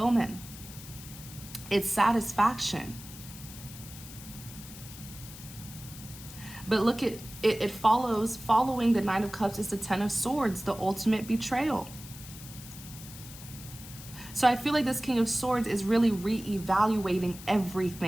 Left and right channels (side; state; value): left; noise; hiss, 15 dB below the sound